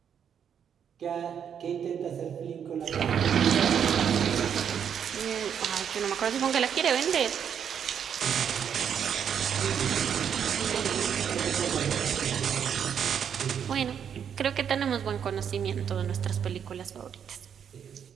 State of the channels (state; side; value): quieter; left; 8.1 dB